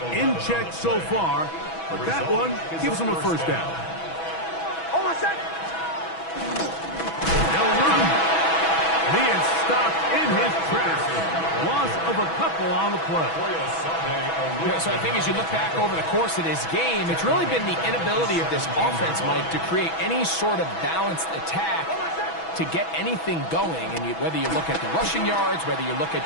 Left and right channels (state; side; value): late; right; 6.1 ms